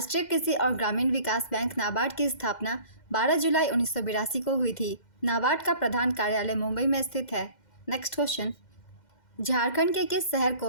कृषि और ग्रामीण विकास बैंक नाबार्ड की स्थापना 12 जुलाई 1982 को हुई थी। नाबार्ड का प्रधान कार्यालय मुंबई में स्थित है। नेक्स्ट क्वेश्चन, झारखंड के किस शहर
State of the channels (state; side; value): late; right; 2.1 ms